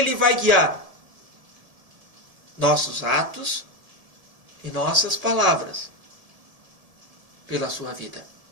vai guiar nossos atos e nossas palavras pela sua vida.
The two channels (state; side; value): late; left; 1.7 ms